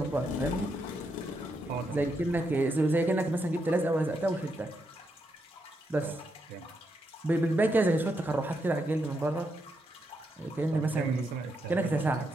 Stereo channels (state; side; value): normal; both; correlation 0.81